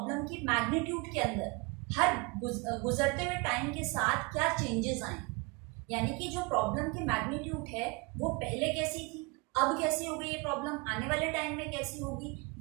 की मैग्नीट्यूड के अंदर हर गुजरते हुए टाइम के साथ क्या चेंजेस आए, यानी कि जो प्रॉब्लम की मैग्नीट्यूड है वो पहले कैसी थी, अब कैसी हो गई ये प्रॉब्लम, आने वाले टाइम में कैसी होगी,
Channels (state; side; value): quieter; left; 27.6 dB